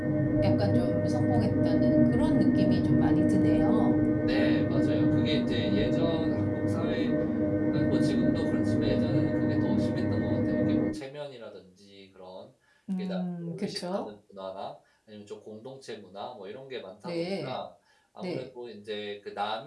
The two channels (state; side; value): identical; both; correlation 1.00